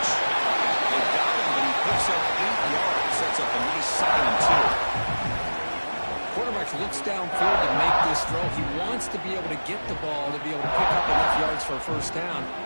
They got him, but he picks up 8 yards. Sets up a nice 2nd and 2. Quarterback looks downfield to make this throw. He wants to be able to get the ball to be able to pick up enough yards for a first down.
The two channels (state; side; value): inverted; both; correlation -1.00